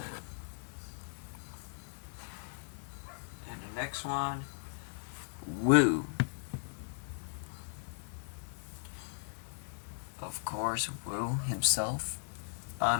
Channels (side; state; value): right; silent; 53 dB below the other